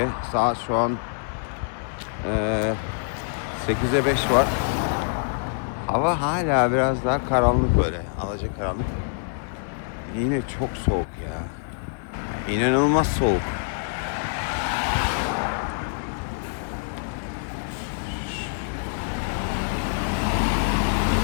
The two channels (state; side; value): silent; right; digital silence